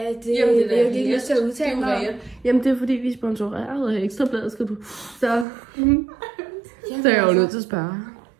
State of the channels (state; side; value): drops out; left; at 5.5 s